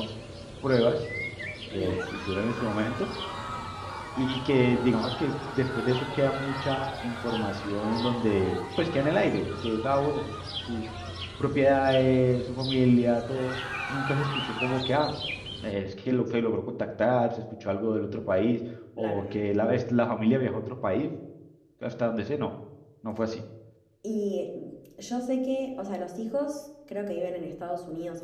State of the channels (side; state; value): both; identical; correlation 1.00